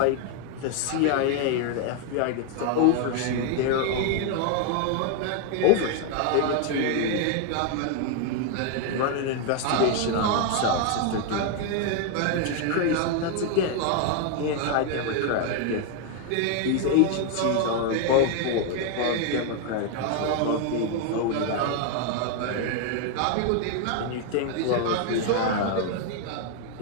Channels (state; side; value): different; both; correlation 0.01